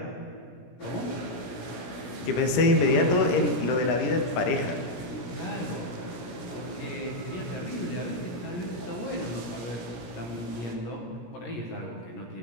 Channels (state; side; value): late; right; 17 ms